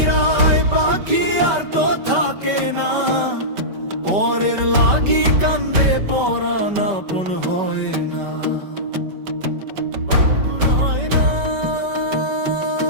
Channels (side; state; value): left; late; 5.2 ms